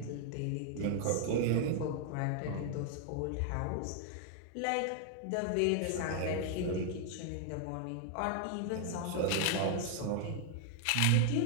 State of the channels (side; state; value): both; different; correlation 0.00